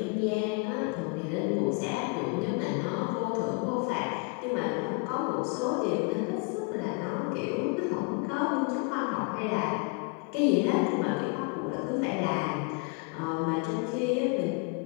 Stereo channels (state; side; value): quieter; right; 31.9 dB